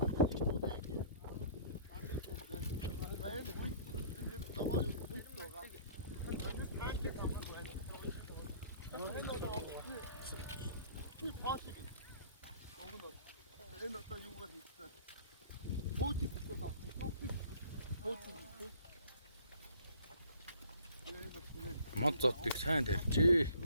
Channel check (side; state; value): both; inverted; correlation -0.53